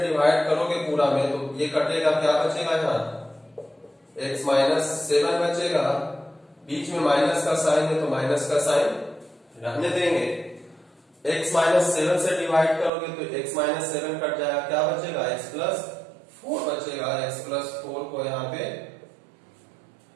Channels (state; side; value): drops out; left; at 12.9 s